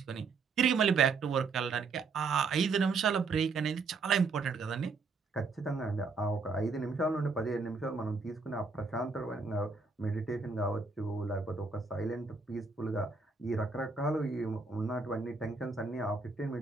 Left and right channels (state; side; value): quieter; left; 4.4 dB